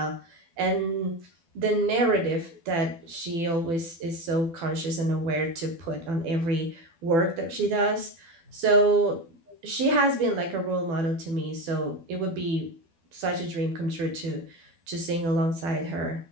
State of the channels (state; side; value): late; left; 12 ms